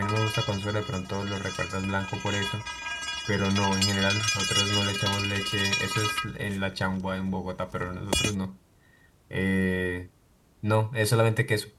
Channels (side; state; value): both; identical; correlation 1.00